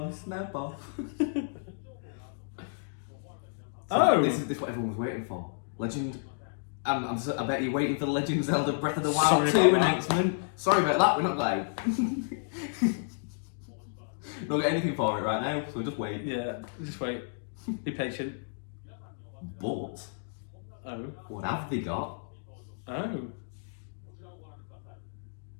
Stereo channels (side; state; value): right; silent; digital silence